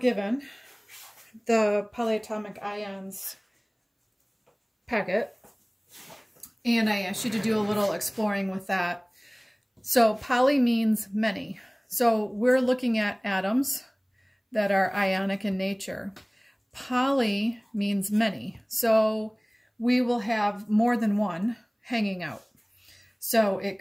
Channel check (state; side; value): identical; both; correlation 1.00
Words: the polyatomic ions packet, and I asked you to do a little exploring with that. So poly means many. So we're looking at atoms that are ionic in nature. Poly means many. So we will have more than one hanging out. So